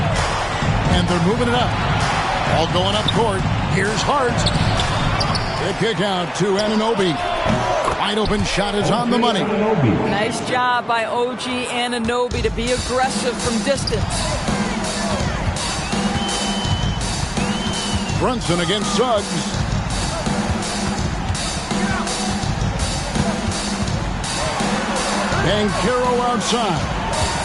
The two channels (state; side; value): identical; both; correlation 1.00